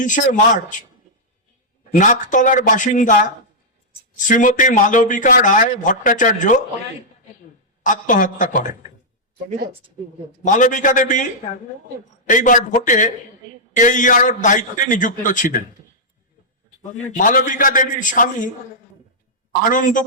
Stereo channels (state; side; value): normal; both; correlation -0.09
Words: মার্চ নাকতলার বাসিন্দা শ্রীমতী মালবিকা রায় ভট্টাচার্য আত্মহত্যা করেন। মালবিকা দেবী এইবার ভোটে AER দায়িত্বে নিযুক্ত ছিলেন। মালবিকা দেবীর স্বামী